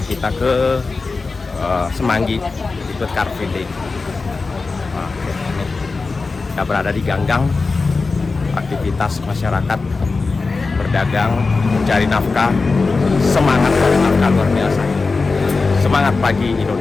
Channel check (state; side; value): quieter; right; 4.0 dB